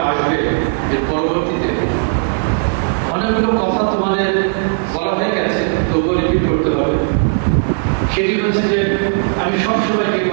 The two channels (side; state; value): left; silent; digital silence